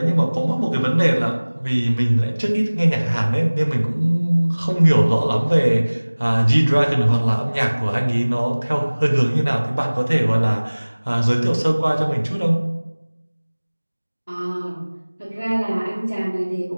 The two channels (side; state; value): both; inverted; correlation -1.00